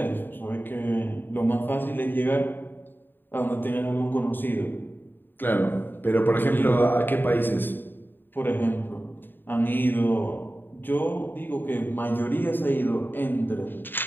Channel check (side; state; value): right; late; 0.094 ms